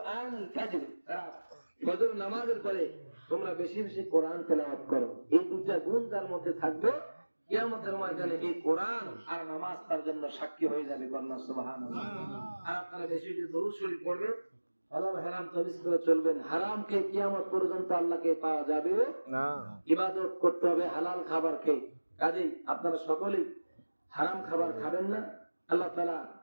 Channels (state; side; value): inverted; both; correlation -1.00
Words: ফাজর, ফজর নামাজের পরে তোমরা বেশি বেশি কোরআন তেলাওয়াত করো। এই দুইটা গুণ যার মধ্যে থাকবে, কিয়ামতের ময়দানে এই কোরআন আর নামাজ তার জন্য সাক্ষী হয়ে যাবে, কন্যা সুবহানাল্লাহ। আর আপনারা বেশি বেশি দরুদ শরীফ পড়বেন, হালাল হারাম তামিজ করে চলবেন। হারামকে কিয়ামত পর্যন্ত আল্লাহকে পাওয়া যাবে না, ইবাদত করতে হবে হালাল খাবার খেয়ে। কাজেই আপনারা সকলেই হারাম খাবার খাবেন না। আল্লাহ তাআলা